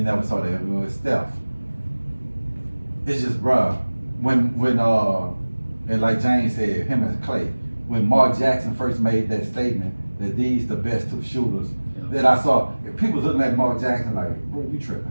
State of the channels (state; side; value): inverted; both; correlation -1.00